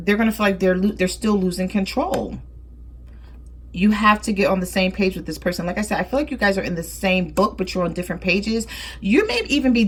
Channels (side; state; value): both; identical; correlation 1.00